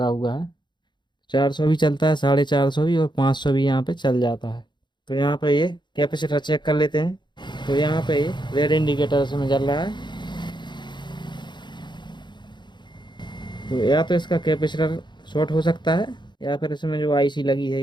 हुआ है। 400 भी चलता है, 450 भी, और 500 भी यहाँ पे चल जाता है। तो यहाँ पे ये कैपेसिटर चेक कर लेते हैं। तो यहाँ पे ये रेड इंडिकेटर इसमें जल रहा है। तो या तो इसका कैपेसिटर शॉर्ट हो सकता है, या फिर इसमें जो आईसी लगी है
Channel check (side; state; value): right; late; 0.22 ms